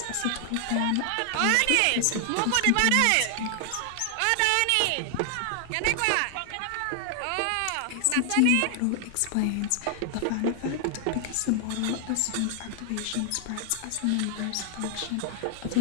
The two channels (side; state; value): both; different; correlation 0.00